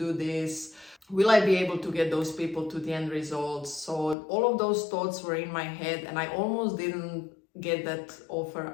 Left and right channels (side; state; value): right; drops out; at 4.2 s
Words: this? Will I be able to get those people to the end results? So all of those thoughts were in my head and I almost didn't get that offer